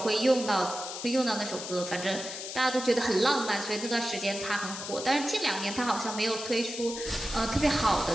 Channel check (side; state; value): left; noise; hiss, 8 dB below the sound